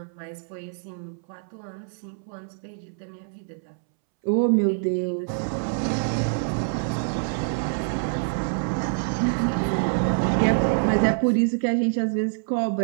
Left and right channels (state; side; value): silent; left; 61 dB below the other